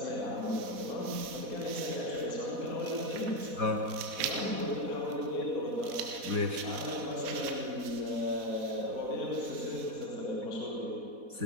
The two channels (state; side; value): late; left; 4.1 ms